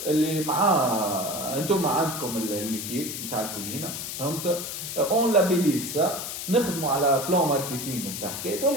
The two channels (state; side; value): noise; left; hiss, 6 dB below the sound